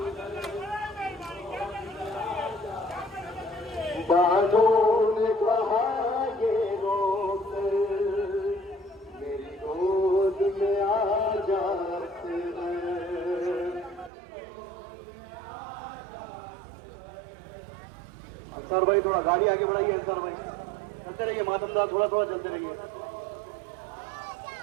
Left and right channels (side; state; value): left; drops out; at 14.1 s